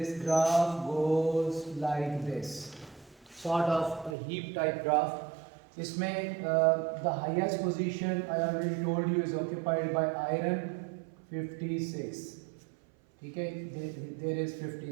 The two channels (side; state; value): left; drops out; at 4.2 s